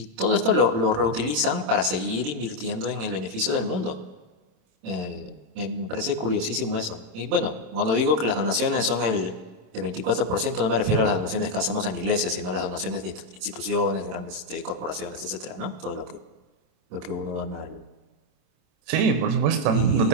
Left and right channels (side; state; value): left; late; 27 ms